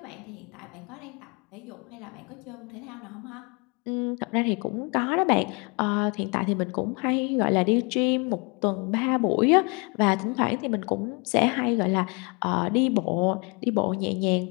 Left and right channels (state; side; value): quieter; right; 31.6 dB